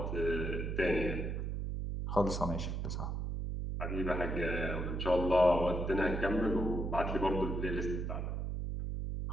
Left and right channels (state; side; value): noise; right; hum, 2 dB below the sound